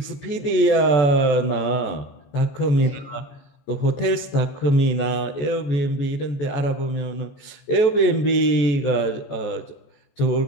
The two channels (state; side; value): late; right; 14 ms